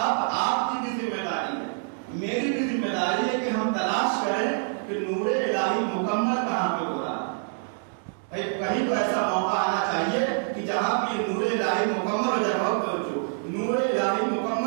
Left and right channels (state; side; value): silent; left; 61 dB below the other